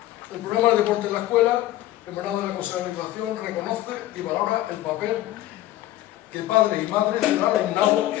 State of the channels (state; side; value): quieter; right; 14.8 dB